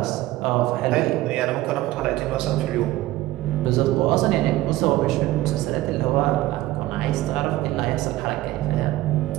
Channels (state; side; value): quieter; left; 16.7 dB